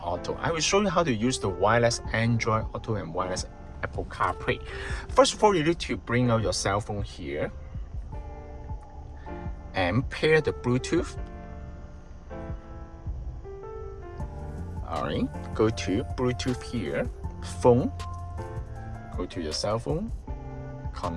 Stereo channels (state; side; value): identical; both; correlation 1.00